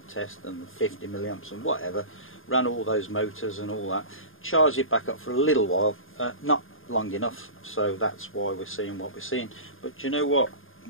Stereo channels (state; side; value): late; right; 0.59 ms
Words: test and 50 milliamps and whatever, ran all those motors and all that, charged it back up for a little while, not long enough, so that's why we're seeing what we're seeing. But do you know what?